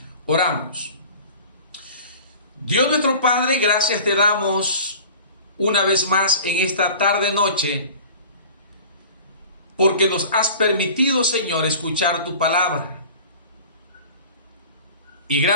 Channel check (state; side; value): inverted; both; correlation -0.42